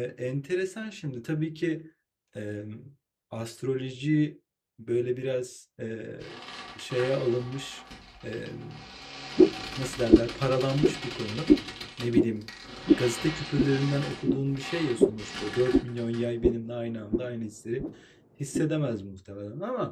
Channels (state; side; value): identical; both; correlation 1.00